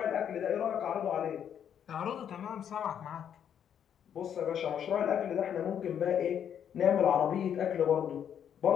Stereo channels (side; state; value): right; quieter; 8.9 dB